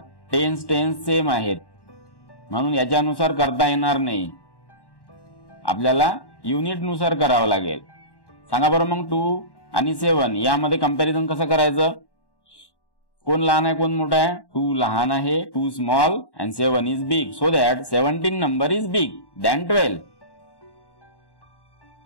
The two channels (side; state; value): right; late; 1.1 ms